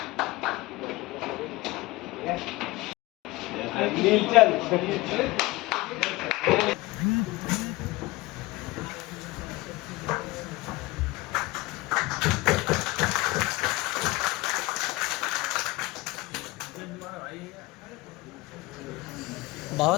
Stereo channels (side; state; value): right; quieter; 21.1 dB